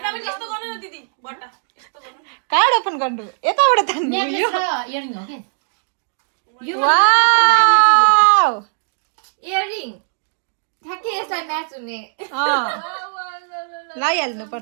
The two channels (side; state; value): left; silent; digital silence